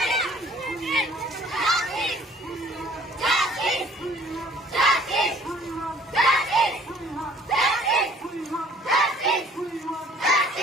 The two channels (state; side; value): normal; both; correlation 0.55